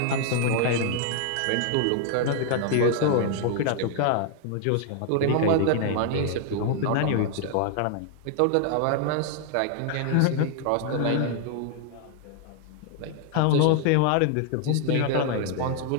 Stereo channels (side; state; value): both; different; correlation 0.00